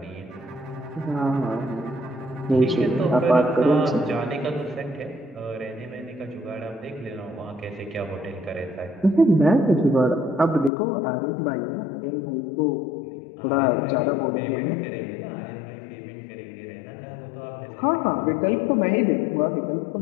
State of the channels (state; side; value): drops out; right; at 10.7 s